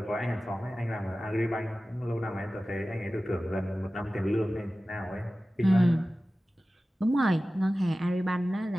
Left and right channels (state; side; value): normal; both; correlation 0.96